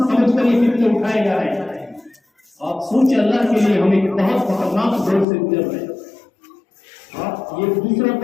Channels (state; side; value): drops out; right; at 5.2 s